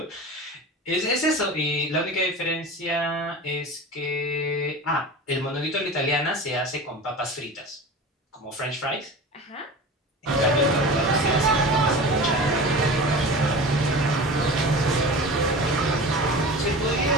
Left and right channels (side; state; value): both; normal; correlation 0.33